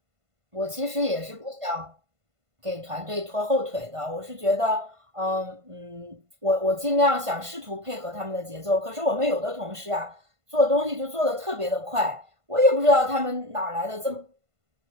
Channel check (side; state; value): left; late; 1.5 ms